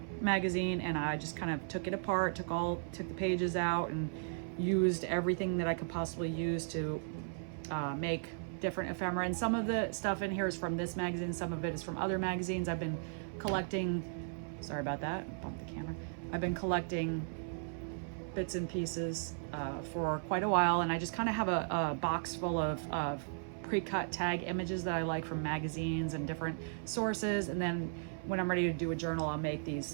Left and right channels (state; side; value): silent; left; 54 dB below the other